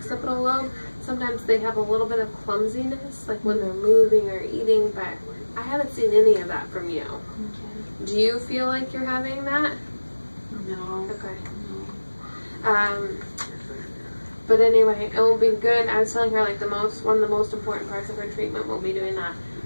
lobe, sometimes they have a little bit of clumsiness, like when they're moving or eating, but I haven't seen any of that from you. Okay. Do you feel like you're having that? No. Okay. No. But anyway, it will be good. I was telling her like one of the most important parts of her treatment will be doing that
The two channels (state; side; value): inverted; both; correlation -1.00